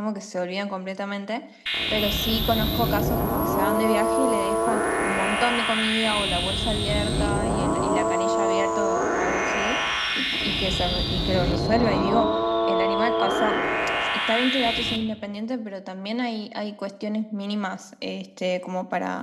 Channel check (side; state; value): both; identical; correlation 1.00